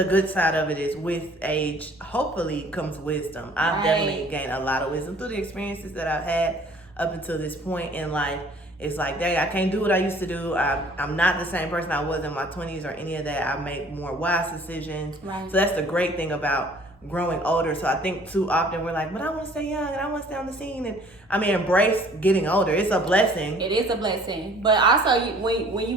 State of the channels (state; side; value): normal; both; correlation 0.54